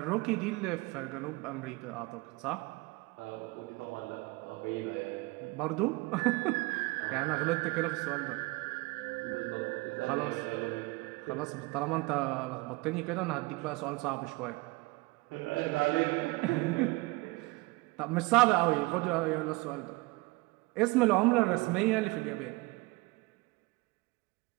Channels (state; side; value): quieter; left; 24.0 dB